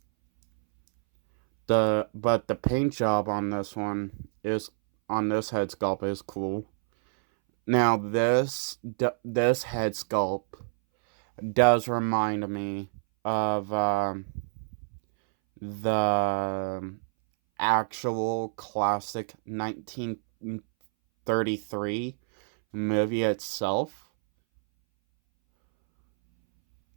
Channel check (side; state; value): left; silent; 60 dB below the other